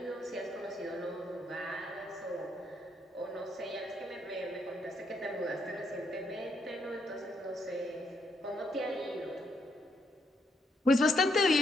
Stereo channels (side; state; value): both; normal; correlation 0.75